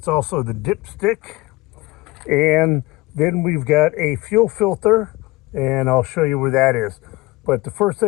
also the dipstick. And then we've got a fuel filter, and I'll show you where that is. But the first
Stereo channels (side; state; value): right; quieter; 21.2 dB